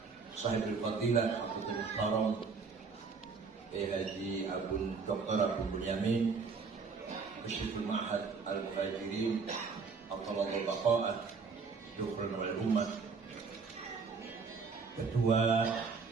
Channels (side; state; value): left; quieter; 5.0 dB